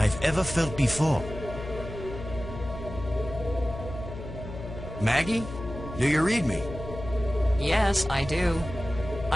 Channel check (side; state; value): left; noise; hum, 10 dB below the sound